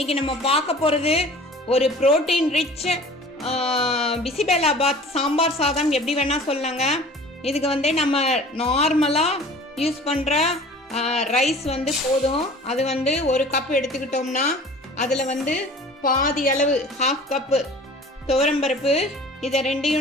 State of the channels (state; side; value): normal; both; correlation 0.44